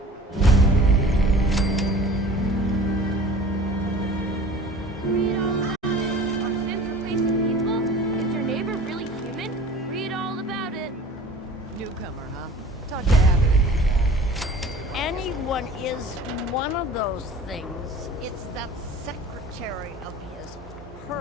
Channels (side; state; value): both; normal; correlation 0.43